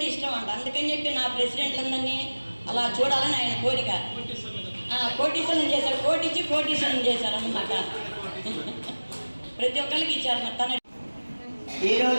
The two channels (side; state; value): both; inverted; correlation -1.00